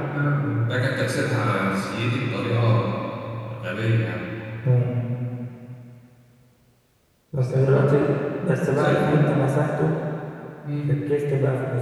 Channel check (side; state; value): both; identical; correlation 1.00